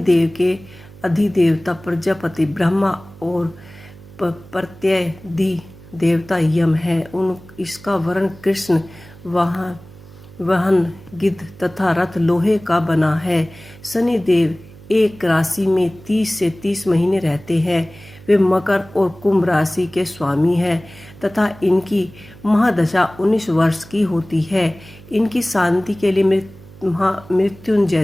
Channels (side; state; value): right; noise; hum, 20 dB below the sound